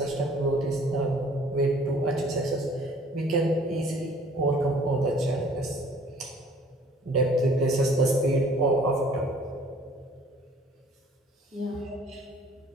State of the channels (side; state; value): both; normal; correlation 0.55